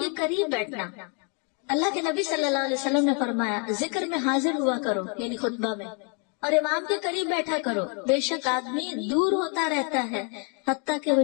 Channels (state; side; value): quieter; right; 36.5 dB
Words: قریب بیٹھنا، اللہ کے نبی صلی اللہ علیہ وسلم نے فرمایا ذکر میں حاضر ہوا کرو، یعنی خطبہ میں، اور امام کے قریب بیٹھا کرو، بے شک آدمی دور ہوتا رہتا ہے حتیٰ کہ وہ